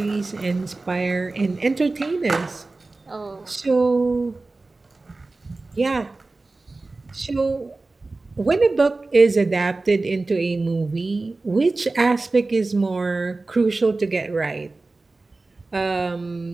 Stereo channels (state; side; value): quieter; left; 3.4 dB